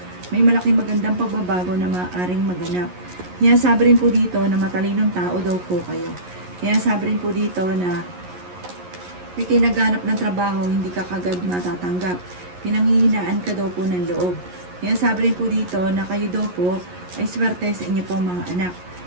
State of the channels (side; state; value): left; late; 11 ms